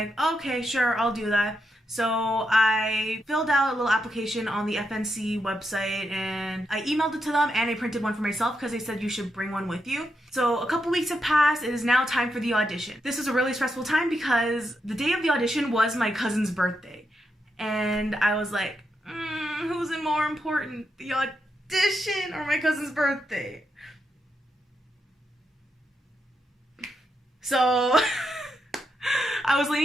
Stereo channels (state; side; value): normal; both; correlation 0.83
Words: okay, sure, I'll do that. So I filled out a little application on the FNC website, and I emailed it to them, and I printed one for myself because they said you should bring one with you. So a couple weeks have passed. It is now time for the audition. This was a really stressful time because the day of the audition was my cousin's birthday. And I was like, who's more important, the audition or my cousin's birthday? So I was